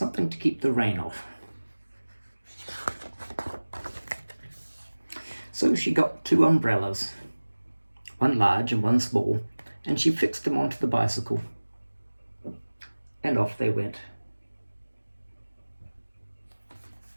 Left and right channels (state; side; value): inverted; both; correlation -1.00